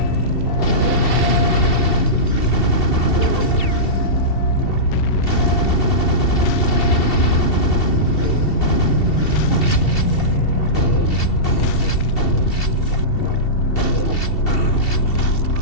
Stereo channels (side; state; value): right; late; 2.7 ms